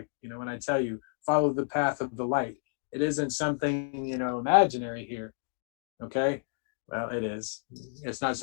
you know, when I tell you follow the path of the light, it isn't something, you know, imaginary here. Okay. Well, it is. It's not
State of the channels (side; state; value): right; silent; digital silence